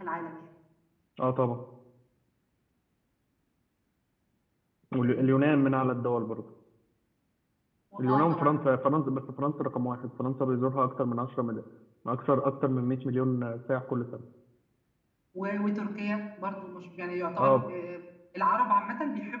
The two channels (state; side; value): identical; both; correlation 1.00